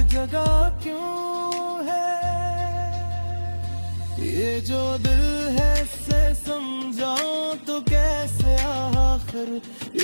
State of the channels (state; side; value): inverted; both; correlation -1.00